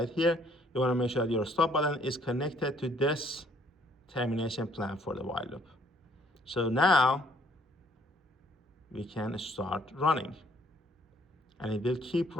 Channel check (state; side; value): normal; both; correlation 0.62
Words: here. You wanna make sure that your stop button is connected to this termination plan for the while loop. So now we can start running, and it will keep